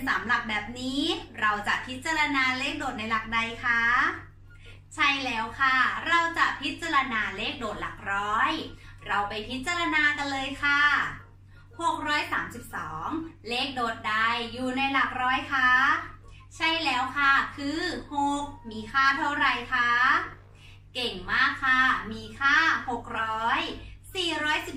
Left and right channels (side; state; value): both; identical; correlation 1.00